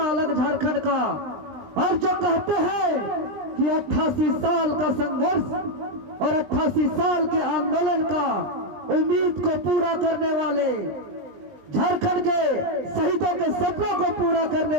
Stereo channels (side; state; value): left; late; 20 ms